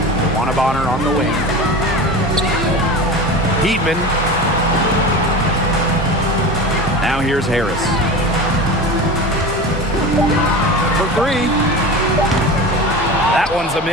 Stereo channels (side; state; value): both; normal; correlation 0.30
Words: Wanabonner on the wing. Heatman. Now here's Harris. For three. That one's a